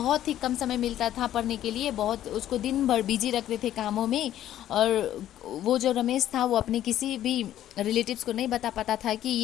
ही कम समय मिलता था पढ़ने के लिए। बहुत उसको दिन भर बिजी रखते थे कामों में। और वो जो रमेश था वो अपने किसी भी रिलेटिव्स को नहीं बता पाता था कि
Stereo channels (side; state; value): right; quieter; 12.2 dB